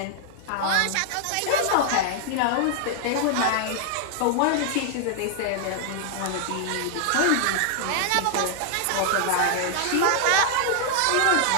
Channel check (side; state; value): both; different; correlation 0.00